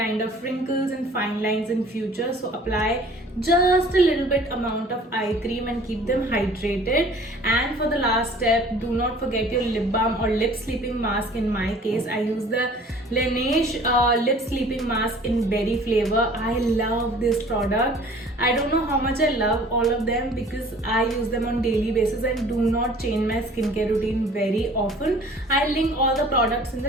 of wrinkles and fine lines in future. So apply just a little bit amount of eye cream and keep them hydrated. And for the last step, do not forget your lip balm or lip sleeping mask. In my case, I use the Laneige lip sleeping mask in berry flavor. I love this product. I don't know how much I love all of them because I use them on daily basis and do not change my skincare routine very often. I'll link all the products in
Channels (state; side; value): normal; both; correlation 0.50